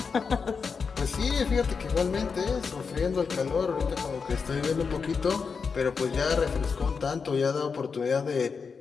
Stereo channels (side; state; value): right; quieter; 5.4 dB